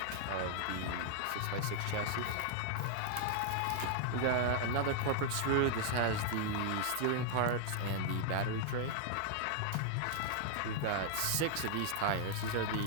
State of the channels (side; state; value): both; different; correlation 0.00